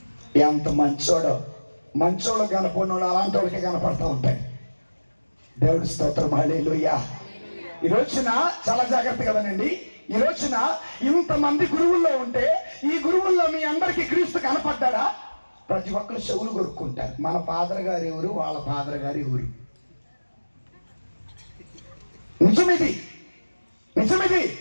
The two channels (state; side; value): inverted; both; correlation -1.00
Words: ఎంత మంచోడు కనపడినోడు అలాంటి వాళ్ళకి కనపడతా ఉంటాయి. దేవుడి స్తోత్రం, హల్లెలూయా. ఈ రోజున చాలా జాగ్రత్తగా వినండి. ఈ రోజున ఇంతమంది గురువుల్లో ఉంటే ఈ గురువుల్లో మీ అందరికీ క్రీస్తు కనపడ్డాడా? ప్రతి ఒక్కరు చెవులు కొరుక్కుంటారు. మన ఫాదర్ గారు ఎవరు, వాళ్ళ ఫాదర్ గారు ఎవరు? నిజమిది.